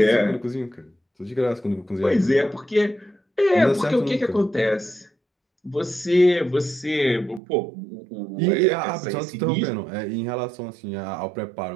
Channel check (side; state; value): left; drops out; at 7.4 s